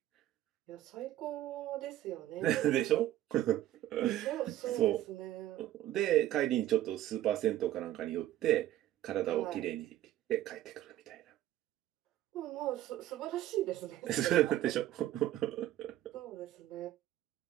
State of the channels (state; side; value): quieter; left; 13.6 dB